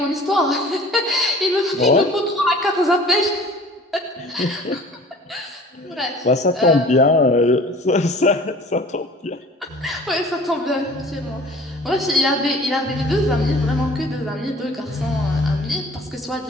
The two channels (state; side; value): normal; both; correlation 0.47